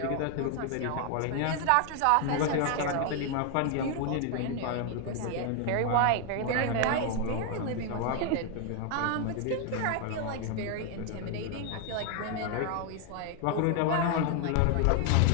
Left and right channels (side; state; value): both; different; correlation 0.00